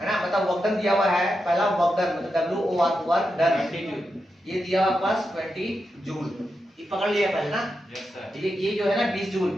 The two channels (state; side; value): normal; both; correlation 0.87